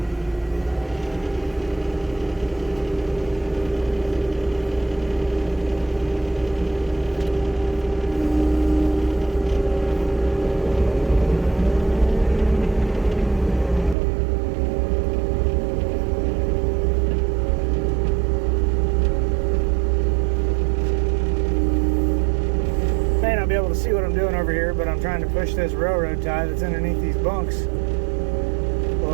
Be able to see what I'm doing over here, but I'm trying to push this railroad tie that's underneath these bunks a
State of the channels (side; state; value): left; drops out; at 14.0 s